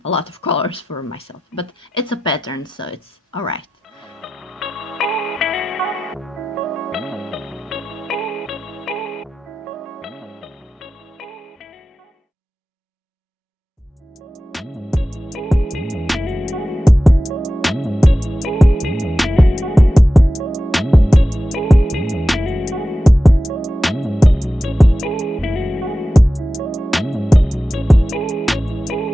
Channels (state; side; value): normal; both; correlation 0.93